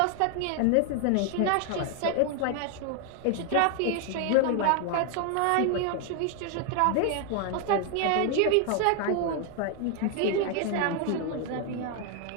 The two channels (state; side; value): different; both; correlation 0.00